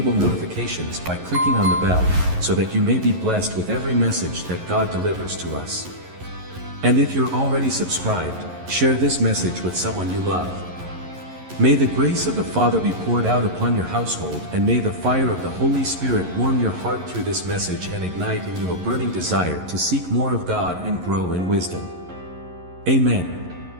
notifications by clicking on the bell, so that you may be blessed with every message that God delivers to us. And if you're already subscribed, share this message with someone you love. May the grace of the Father be poured out upon your household, and may the fire of the Holy Spirit warm your heart through this message and ignite in you a burning desire to seek more of God and grow in wisdom. Amen.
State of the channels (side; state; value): left; late; 11 ms